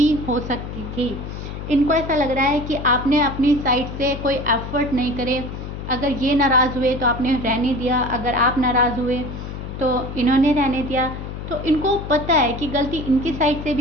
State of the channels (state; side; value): noise; left; hum, 8 dB below the sound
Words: हो सकती थी। इनको ऐसा लग रहा है कि आपने अपनी साइड से कोई एफर्ट नहीं करे। अगर ये नाराज़ हुए तो आपने रहने दिया, अगर आप नाराज़ हुए तो इन्होंने रहने दिया। तो इनको पता है कि गलती इनकी साइड से